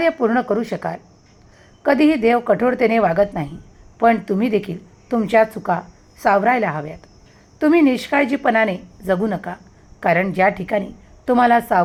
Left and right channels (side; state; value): both; identical; correlation 1.00